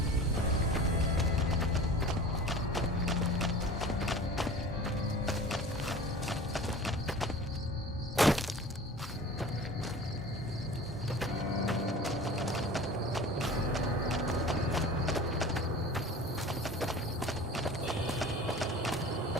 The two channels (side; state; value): both; normal; correlation 0.40